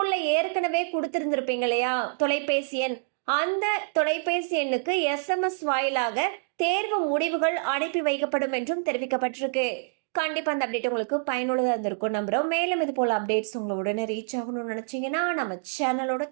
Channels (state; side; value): silent; left; digital silence